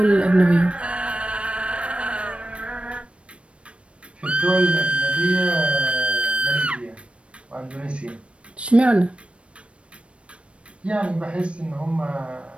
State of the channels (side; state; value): left; late; 0.060 ms